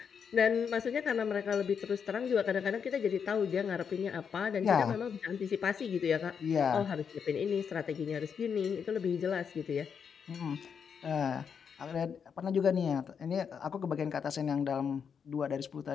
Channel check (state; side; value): quieter; right; 6.9 dB